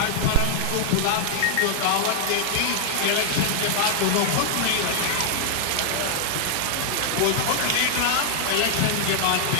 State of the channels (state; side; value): different; both; correlation -0.01